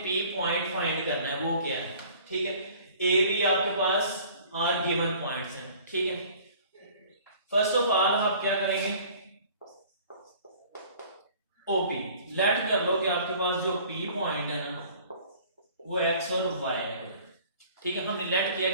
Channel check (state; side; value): inverted; both; correlation -0.50